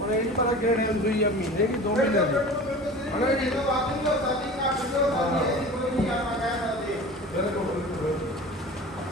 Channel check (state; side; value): normal; both; correlation 0.38